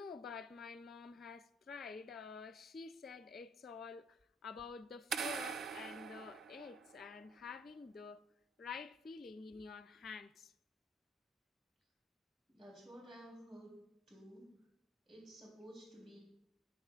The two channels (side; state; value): both; normal; correlation 0.59